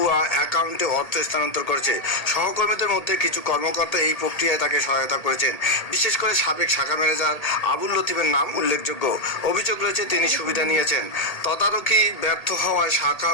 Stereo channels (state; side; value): late; right; 1.8 ms